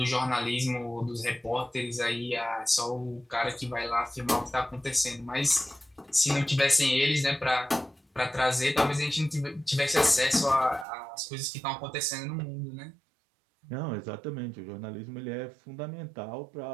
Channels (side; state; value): left; drops out; at 10.9 s